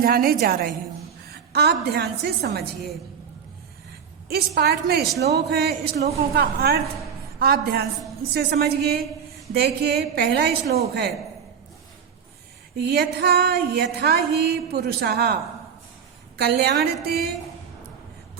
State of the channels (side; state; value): left; quieter; 7.2 dB